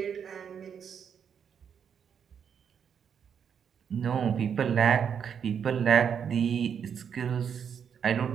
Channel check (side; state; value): left; quieter; 7.6 dB